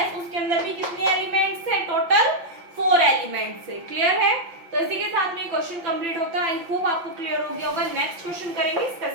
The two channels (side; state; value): left; late; 5.8 ms